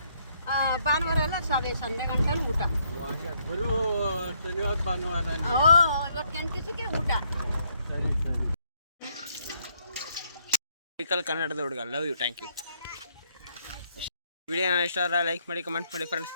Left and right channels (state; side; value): inverted; both; correlation -0.71